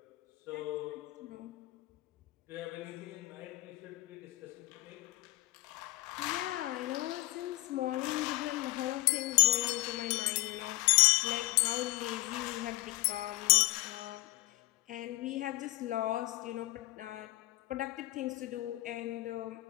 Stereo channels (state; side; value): quieter; right; 20.3 dB